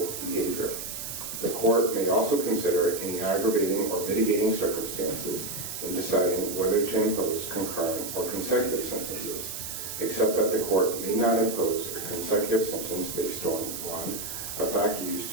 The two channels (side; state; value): right; noise; hiss, 7 dB below the sound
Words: behavior. The court may also consider any aggravating or mitigating circumstances in deciding whether to impose concurrent or consecutive sentences, except that the court may not impose a consecutive sentence based on 1, a fact used